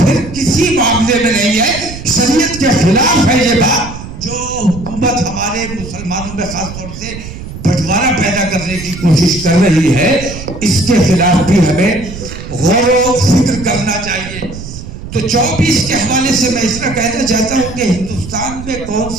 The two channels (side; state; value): right; noise; rumble, 11 dB below the sound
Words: किसी मामले में नहीं है, शरीयत के खिलाफ है ये बात। जो हुकूमत हमारे मुसलमानों में खासतौर से बंटवारा पैदा करने की कोशिश कर रही है, इसके खिलाफ भी हमें गौर व फिक्र करना चाहिए। तो 24 के हवाले से मैं इसका कहना चाहता हूं कि हिंदुस्तान में कौन